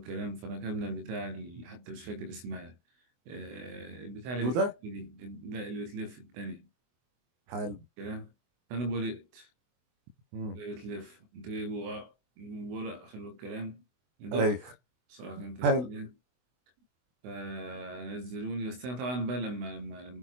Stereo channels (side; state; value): left; late; 24 ms